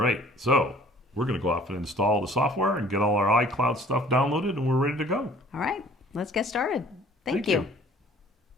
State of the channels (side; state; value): both; normal; correlation 0.52